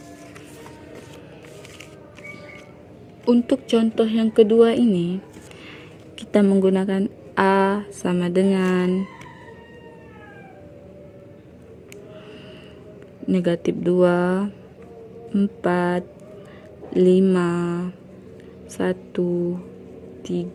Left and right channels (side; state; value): both; identical; correlation 1.00